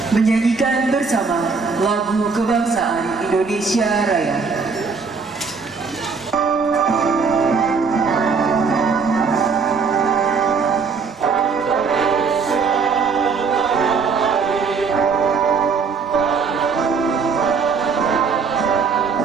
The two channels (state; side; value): quieter; left; 5.1 dB